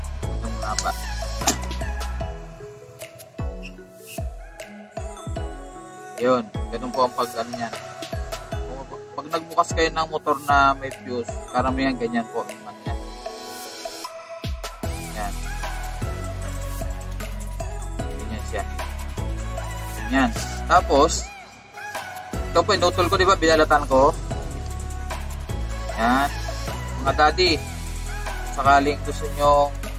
Ito muna pa. Yun. Ganun po ang pag-ano yan. Pag nagbukas kayo ng motor na may fuse, karamihan ganyan po naman yan. Yan. Ganyan siya. Ganyan. Tapos, ito po, inutol ko, diba? Binalatan ko. Yan. Mga daddy, sakaling gusto nyo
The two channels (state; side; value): identical; both; correlation 1.00